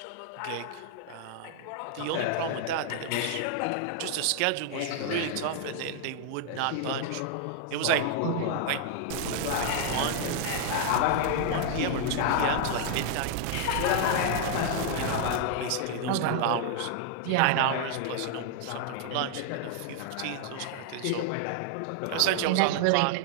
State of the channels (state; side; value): different; both; correlation 0.00